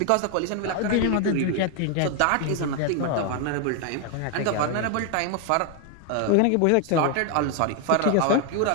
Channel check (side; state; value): both; different; correlation 0.01